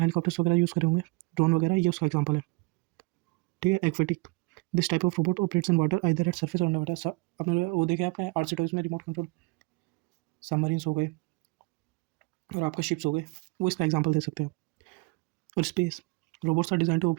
हेलीकॉप्टर्स वगैरह यूज़ करे होंगे, ड्रोन वगैरह, ये उसका एग्जाम्पल है, ठीक है। Aquatic, this type of robot operates in water either at surface और अंडर वाटर। आपने वो देखे आपने RC टॉयज में रिमोट कंट्रोल सबमरीन्स हो गए और आपका शिप्स हो गए, वो इसका एग्जाम्पल दे सकते हैं। और space, robots are design to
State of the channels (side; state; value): left; quieter; 26.6 dB